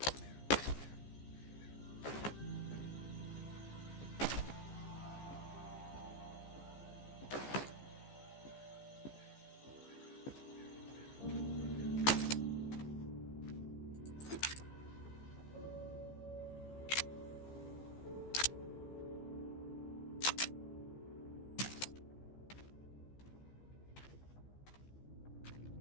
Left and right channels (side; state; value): right; late; 15 ms